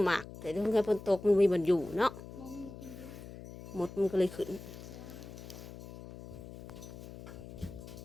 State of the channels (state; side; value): noise; left; hum, 13 dB below the sound